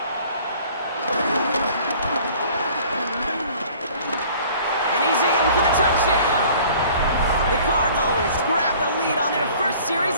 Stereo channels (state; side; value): inverted; both; correlation -0.51